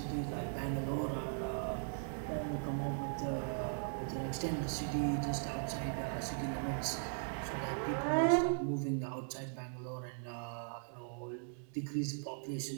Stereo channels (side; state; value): left; silent; digital silence